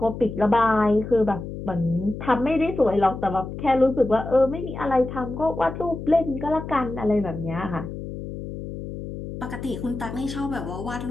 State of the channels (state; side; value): noise; left; hum, 9 dB below the sound